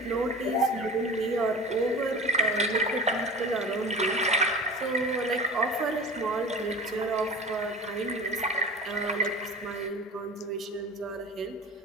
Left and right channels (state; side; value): normal; both; correlation 0.35